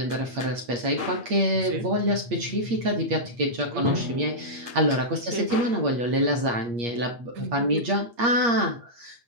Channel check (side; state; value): left; late; 8.5 ms